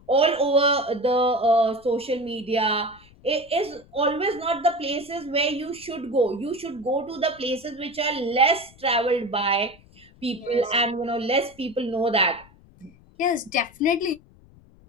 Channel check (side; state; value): left; noise; rumble, 26 dB below the sound